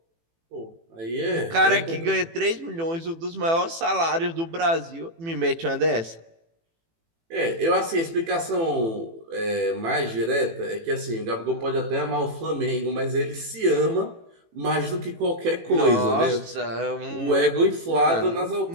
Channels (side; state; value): left; late; 18 ms